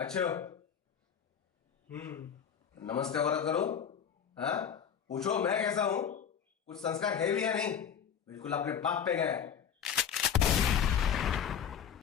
हो? नमस्ते वरद करो। हाँ, पूछो मैं कैसा हूं? कुछ संस्कार है भी या नहीं? बिल्कुल अपने बाप पे गया है।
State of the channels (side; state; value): right; quieter; 8.0 dB